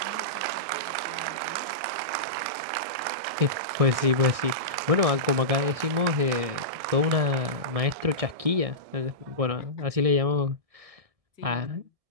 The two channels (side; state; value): left; late; 1.6 ms